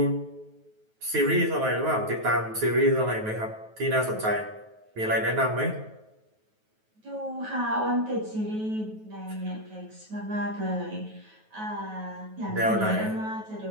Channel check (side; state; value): left; late; 9.3 ms